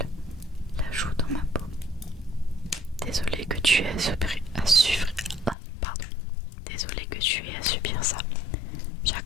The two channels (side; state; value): right; drops out; at 5.6 s